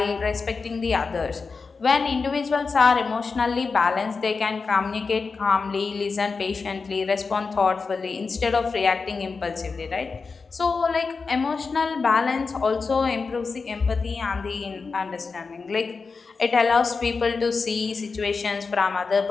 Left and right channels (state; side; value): quieter; right; 4.6 dB